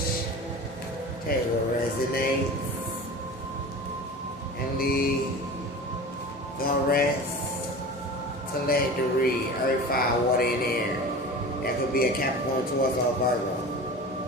Tell you what resonates. And the rest. Teledry, earth, fire, water, and air. That could be a Capricorn, Taurus, or Virgo.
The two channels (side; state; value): left; noise; hum, 29 dB below the sound